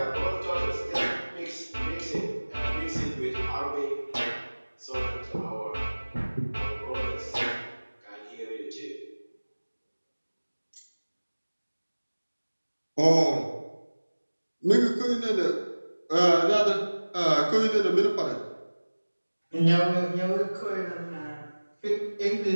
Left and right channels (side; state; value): both; inverted; correlation -1.00